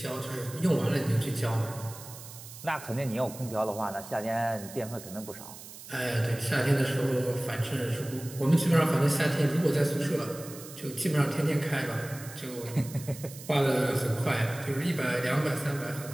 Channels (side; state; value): right; noise; hiss, 15 dB below the sound